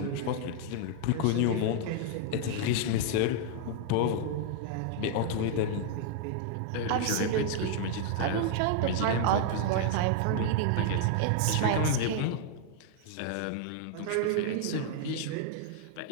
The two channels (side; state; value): both; different; correlation -0.01